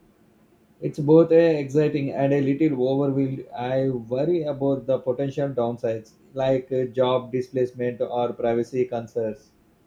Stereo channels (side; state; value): both; identical; correlation 1.00